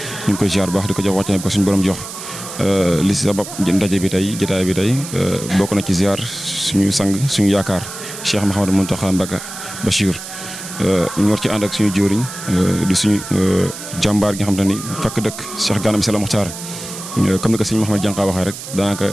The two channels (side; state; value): right; noise; hiss, 11 dB below the sound